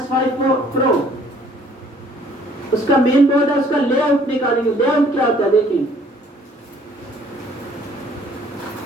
Pro, उसका मेन बोर्ड है, उसका लेआउट निकालेंगे। लेआउट क्या होता है देखिए,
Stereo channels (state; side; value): normal; both; correlation 0.58